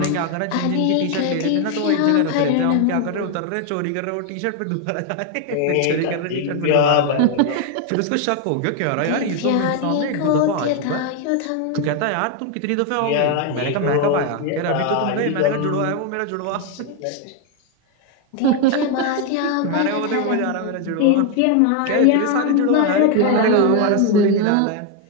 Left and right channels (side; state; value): both; different; correlation 0.01